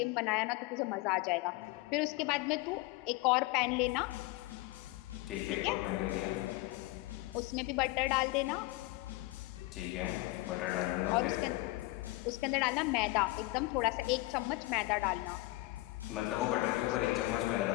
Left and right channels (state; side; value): quieter; right; 20.3 dB